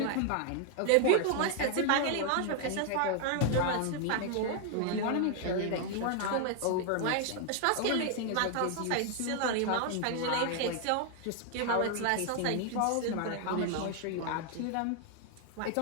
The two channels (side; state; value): both; different; correlation 0.00